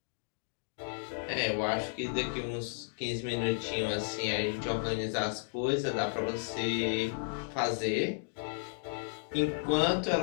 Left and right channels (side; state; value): right; silent; digital silence